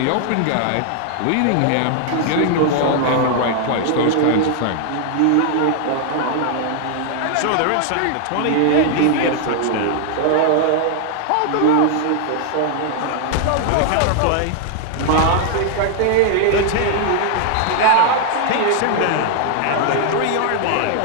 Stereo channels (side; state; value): both; different; correlation 0.00